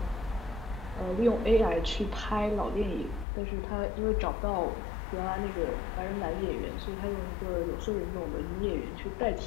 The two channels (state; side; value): drops out; right; at 3.2 s